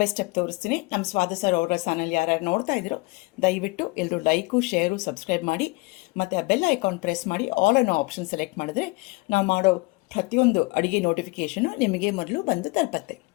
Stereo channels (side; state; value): right; quieter; 24.8 dB